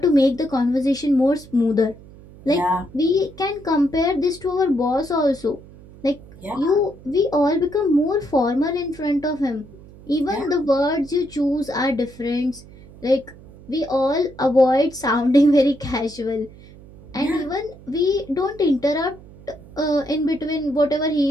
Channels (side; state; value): right; noise; hum, 20 dB below the sound